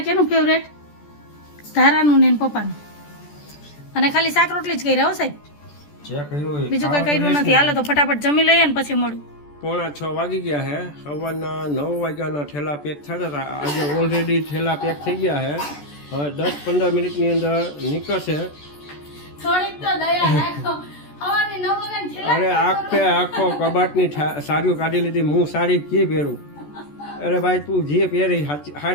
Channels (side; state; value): right; late; 14 ms